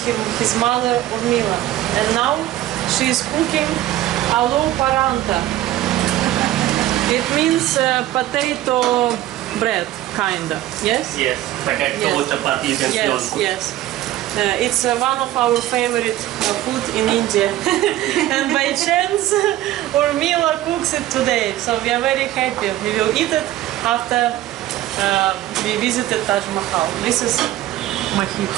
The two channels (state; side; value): quieter; left; 14.3 dB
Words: his mother, Urmila. And now she is cooking aloo paranta. It means potato bread, kinda. Yes? Yes, potato, chapati, Yes, yes. It's one of our favorite food in India. And by chance, Urmila cooks it today. So we are very happy. We will eat it after we visited Taj Mahal. This is Mahit.